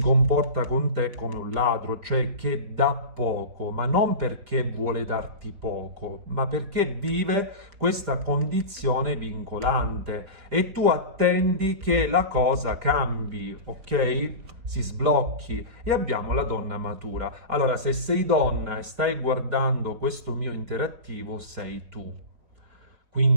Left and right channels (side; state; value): left; late; 4.7 ms